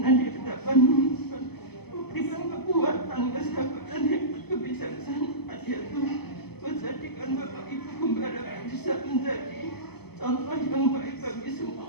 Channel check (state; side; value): late; right; 0.97 ms